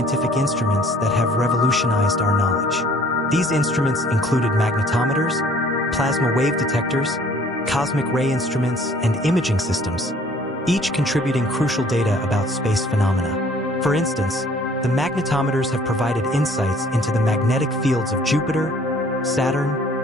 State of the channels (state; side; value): normal; both; correlation 0.56